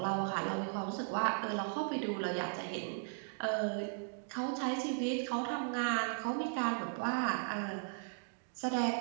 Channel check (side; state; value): left; silent; digital silence